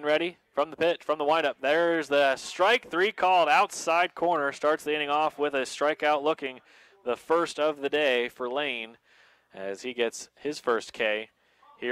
ready from the pitch, from the windup. There's the strike 3 called outside corner. Starts the inning off with a strikeout looking, the first of the day for Lane as he gets his first K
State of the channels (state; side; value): identical; both; correlation 1.00